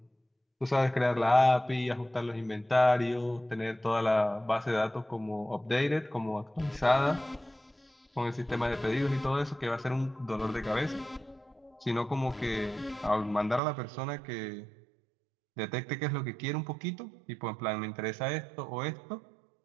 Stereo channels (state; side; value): drops out; left; at 13.6 s